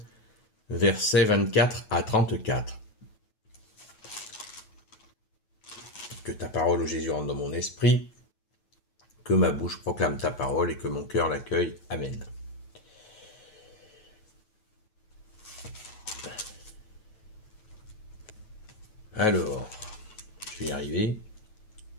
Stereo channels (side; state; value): right; late; 9.2 ms